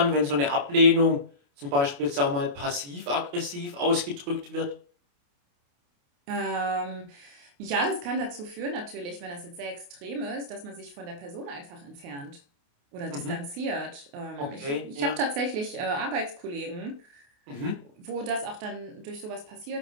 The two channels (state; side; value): late; left; 28 ms